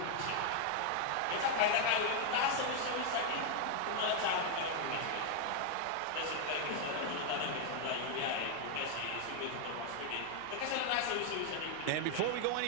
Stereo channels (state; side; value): different; both; correlation 0.00